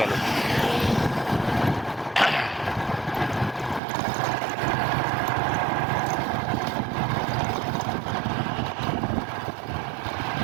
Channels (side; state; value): left; drops out; at 3.8 s